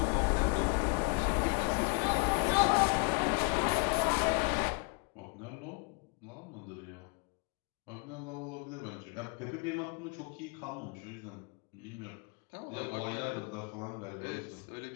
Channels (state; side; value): quieter; right; 30.5 dB